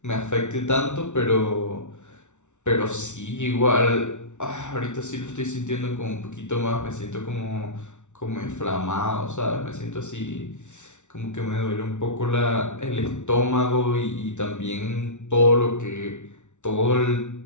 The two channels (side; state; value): right; late; 0.84 ms